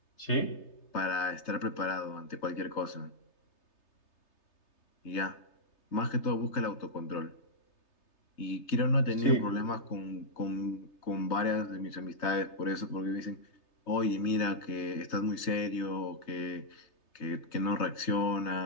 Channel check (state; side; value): late; right; 3.3 ms